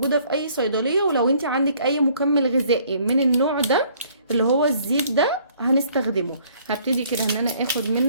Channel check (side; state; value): both; inverted; correlation -0.61